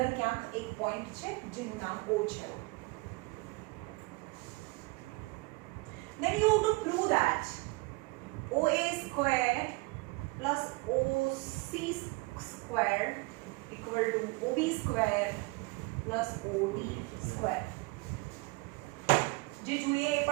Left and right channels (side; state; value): left; quieter; 25.4 dB